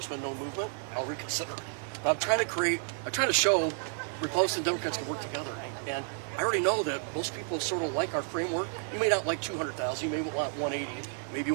been no movement, I'll reconsider. But I'm trying to show Republicans and Democrats can work together. And I already know that most people sort of like our framework. You may not like 200,000, you may want 180, maybe you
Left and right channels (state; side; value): silent; left; 57 dB below the other